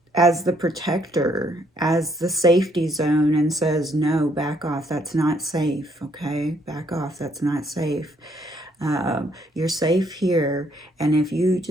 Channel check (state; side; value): normal; both; correlation 0.69